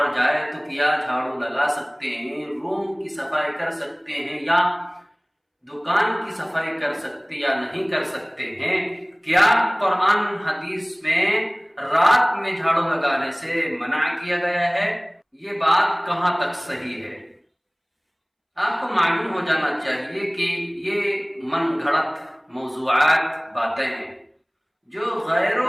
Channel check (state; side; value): identical; both; correlation 1.00